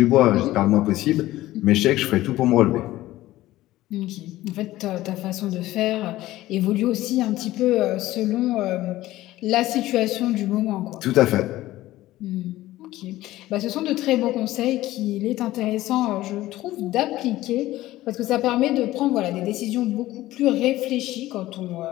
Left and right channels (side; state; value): right; quieter; 16.1 dB